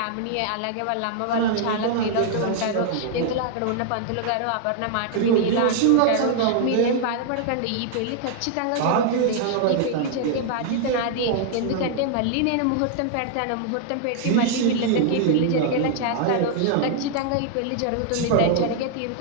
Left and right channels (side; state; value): both; different; correlation -0.01